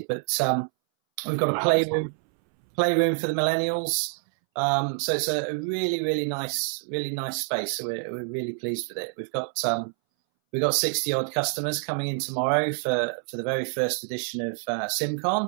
But we've got a playroom for the millennials. So it's a really nice space. So we're really pleased with it. We've got 60 odd customers coming in tomorrow for the very first edition of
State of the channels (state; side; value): silent; left; 60 dB below the other